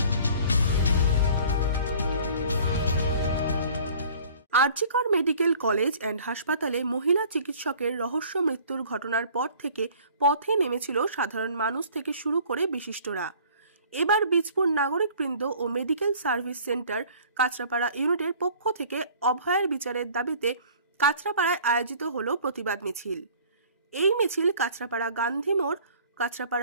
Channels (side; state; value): both; inverted; correlation -0.50